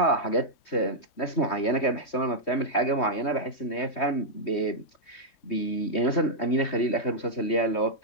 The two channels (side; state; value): right; late; 3.2 ms